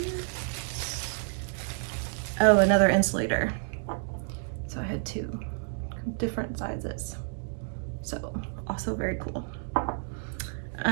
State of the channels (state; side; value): silent; left; 58 dB below the other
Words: oh, another insulator. So I had two different sizes. So also very cool.